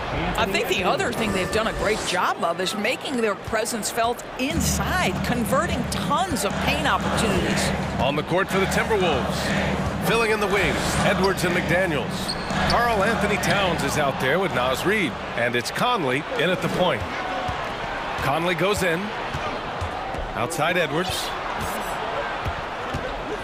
think the other thing they've done a great job of is making their presence felt inside, converting tons of paint opportunities. On the court for the Timberwolves. Filling in the wings, Edwards and McDaniels. Karl Anthony Towns is out there with Naz Reid. And it's Conley in at the point. Conley goes in. Outside Edwards.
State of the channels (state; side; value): identical; both; correlation 1.00